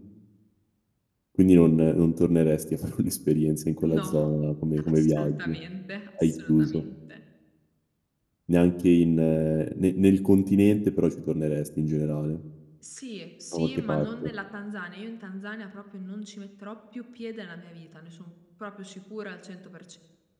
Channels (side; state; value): both; identical; correlation 1.00